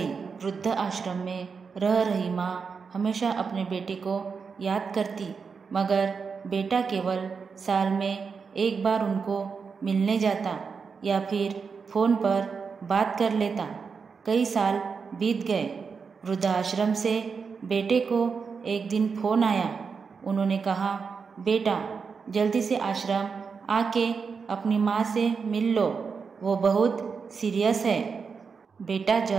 वृद्ध आश्रम में रह रही माँ हमेशा अपने बेटे को याद करती, मगर बेटा केवल साल में एक बार उनको मिलने जाता या फिर फ़ोन पर बात कर लेता। कई साल बीत गए। वृद्धाश्रम से बेटे को एक दिन फ़ोन आया। उन्होंने कहा, बेटा जल्दी से आश्रम आके अपनी माँ से मिल लो, वो बहुत सीरियस है। बेटा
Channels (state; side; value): quieter; left; 5.5 dB